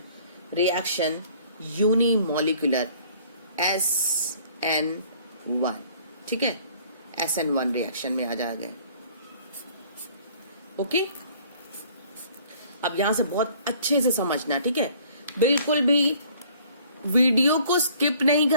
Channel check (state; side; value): inverted; both; correlation -0.55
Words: reaction unimolecular SN1। ठीक है, SN1 रिएक्शन में आ जा गए। ओके, अब यहां से बहुत अच्छे से समझना, ठीक है। बिल्कुल भी वीडियो को स्किप नहीं